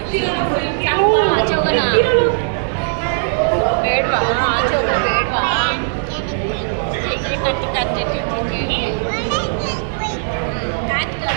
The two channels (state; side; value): silent; left; digital silence